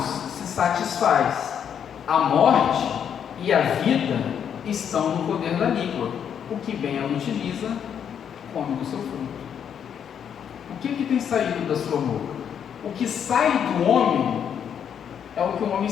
se satisfaz. A morte e a vida estão no poder da língua. O que bem ela utiliza, come do seu fruto. O que tem saído da sua boca? O que sai do homem é o que o homem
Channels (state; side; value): quieter; right; 8.3 dB